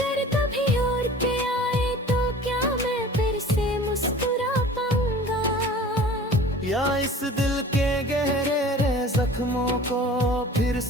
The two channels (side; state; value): both; normal; correlation 0.44